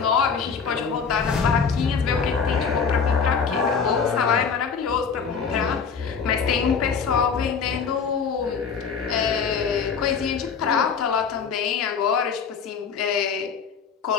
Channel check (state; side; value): quieter; right; 6.1 dB